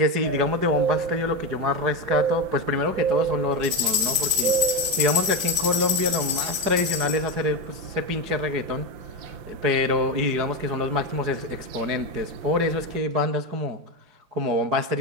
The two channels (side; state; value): left; late; 4.7 ms